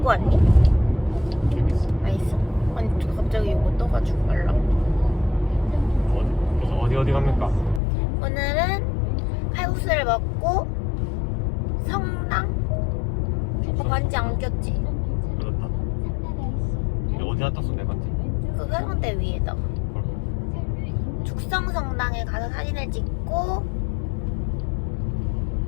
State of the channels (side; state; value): right; drops out; at 7.8 s